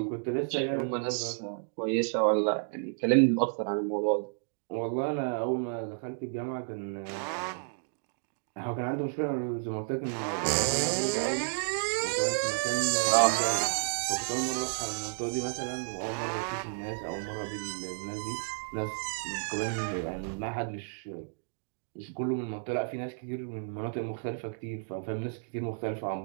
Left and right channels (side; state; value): left; silent; digital silence